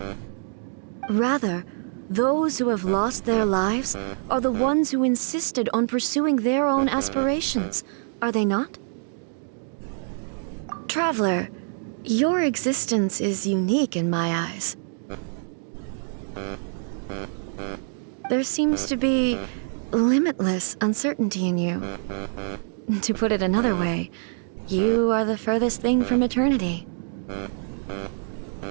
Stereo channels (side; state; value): left; silent; digital silence